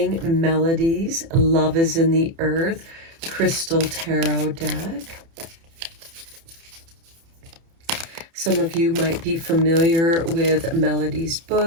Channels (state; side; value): late; left; 30 ms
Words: Melody's Love is in the Earth Crystal Tarot deck. Some of you might be familiar with Melody's